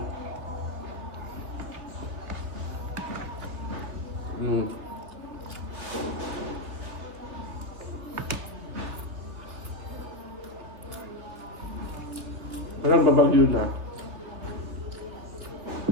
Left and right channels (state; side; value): late; left; 2.7 ms